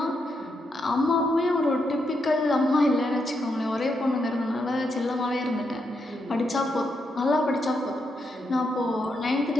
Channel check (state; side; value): normal; both; correlation 0.81